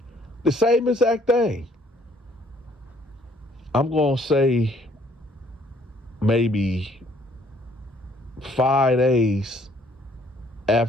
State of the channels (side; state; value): both; normal; correlation 0.62